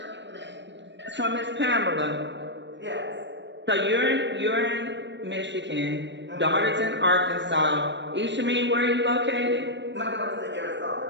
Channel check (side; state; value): left; late; 0.52 ms